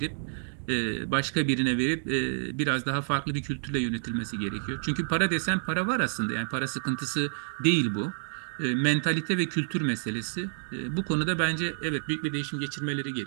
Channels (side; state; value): left; silent; digital silence